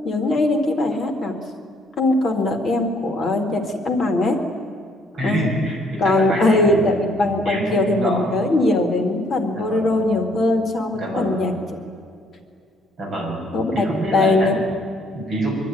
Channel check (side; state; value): both; normal; correlation 0.65